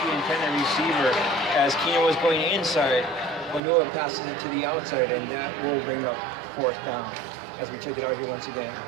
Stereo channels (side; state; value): left; drops out; at 3.6 s